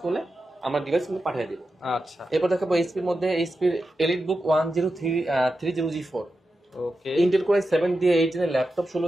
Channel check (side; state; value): both; normal; correlation 0.90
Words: করলে আমরা ডিভাইস কিন্তু পাঠিয়ে দিব। আচ্ছা, এরপর দেখাবো এইচপির মধ্যে এইচপির এলিট বুক 1030 G4 ওকে ইন্টেল কোর i7 দিয়ে 8 জেনের ল্যাপটপ